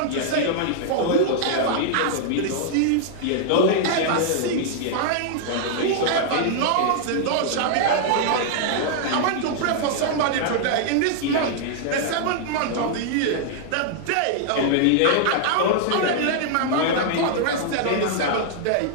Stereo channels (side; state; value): both; different; correlation -0.01